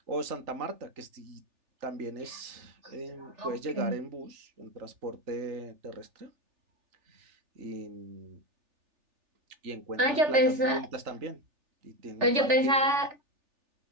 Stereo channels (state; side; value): late; left; 3.4 ms